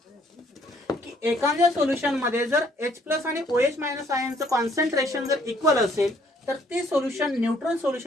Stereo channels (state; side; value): normal; both; correlation 0.64